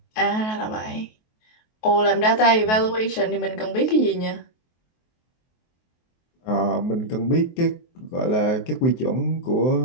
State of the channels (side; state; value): right; late; 23 ms